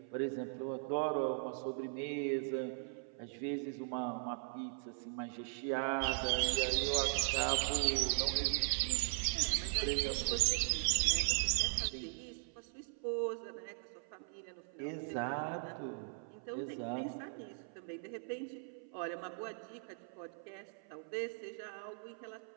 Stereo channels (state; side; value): silent; left; 52 dB below the other